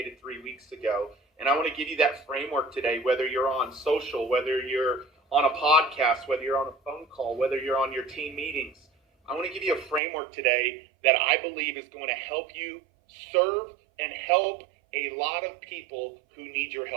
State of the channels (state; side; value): drops out; left; at 10.0 s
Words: 3 weeks ago. And I want to give you that framework today, whether you're on social, whether you're on a podcast, whether you're on a phone call, whether you're on your team meetings. I want to give you a framework today that I believe is going to help you serve and help a lot of people who need your